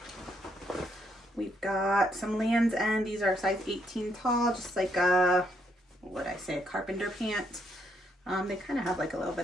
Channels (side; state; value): both; normal; correlation 0.74